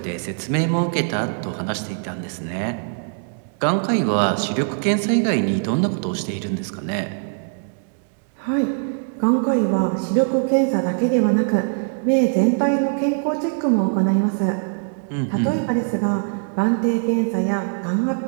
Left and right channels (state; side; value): silent; left; digital silence